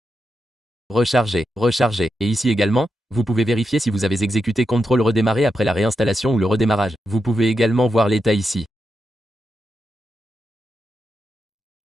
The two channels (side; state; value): both; normal; correlation 0.87